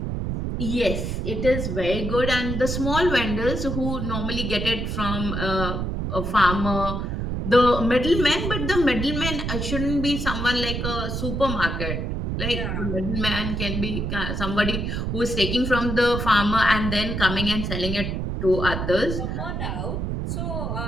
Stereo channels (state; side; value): noise; right; rumble, 2 dB below the sound